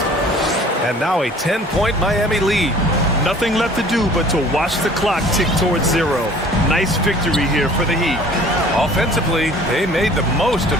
And now a 10-point Miami lead. Nothing left to do but to watch the clock tick towards 0. Nice victory here for the Heat. Offensively, they made the most of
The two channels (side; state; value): both; normal; correlation 0.49